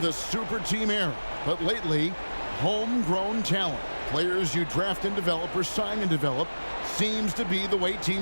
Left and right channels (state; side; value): inverted; both; correlation -1.00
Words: the super team era. But lately, homegrown talent. Players you draft and develop or sign and develop seems to be the way